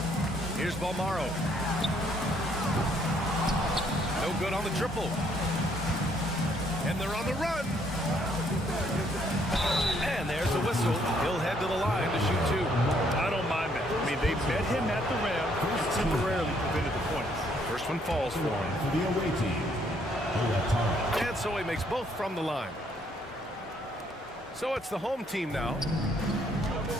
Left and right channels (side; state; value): both; normal; correlation 0.68